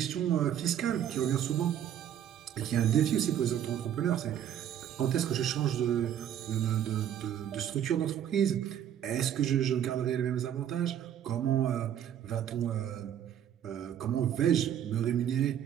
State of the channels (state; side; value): quieter; left; 10.1 dB